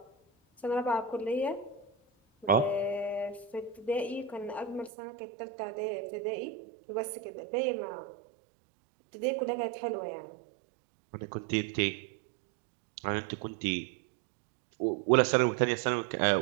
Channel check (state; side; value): drops out; left; at 4.9 s